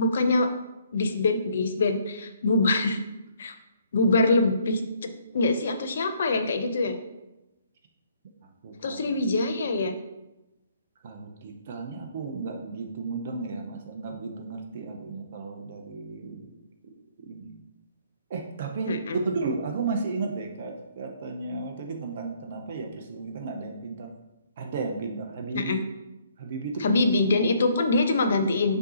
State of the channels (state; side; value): inverted; both; correlation -0.65